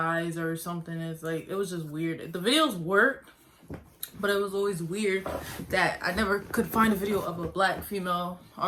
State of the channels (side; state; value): both; identical; correlation 1.00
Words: or something. It's like, it was just weird. The videos worked, but it was always weird that I never could find a video of a black female